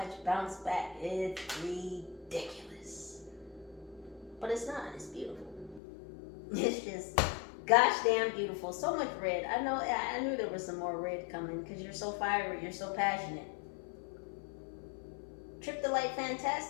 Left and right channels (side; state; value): right; drops out; at 5.8 s